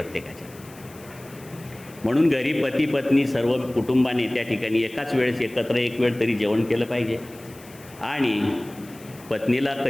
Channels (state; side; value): noise; left; hiss, 22 dB below the sound